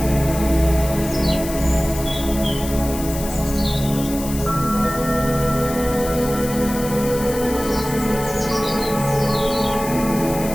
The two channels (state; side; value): noise; left; hiss, 11 dB below the sound